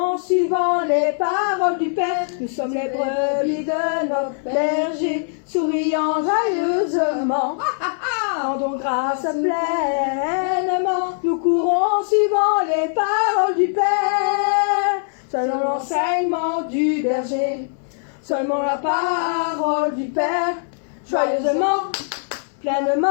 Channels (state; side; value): silent; right; digital silence